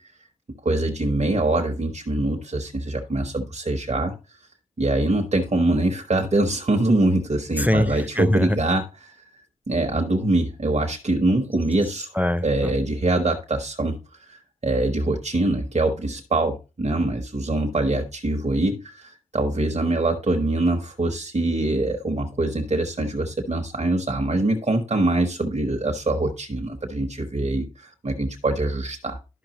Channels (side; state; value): both; normal; correlation 0.73